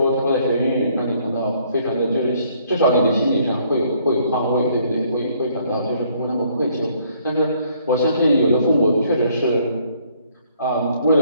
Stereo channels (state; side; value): inverted; both; correlation -0.65